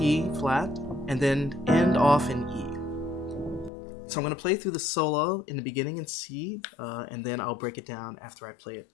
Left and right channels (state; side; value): drops out; right; at 3.7 s